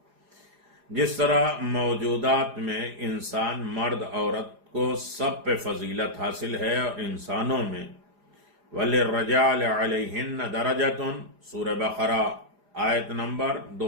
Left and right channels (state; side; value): late; left; 4.9 ms